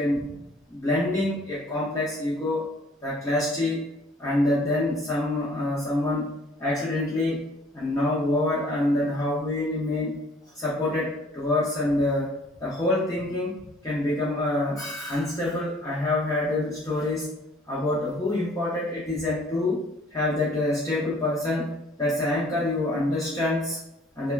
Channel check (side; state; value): both; normal; correlation 0.56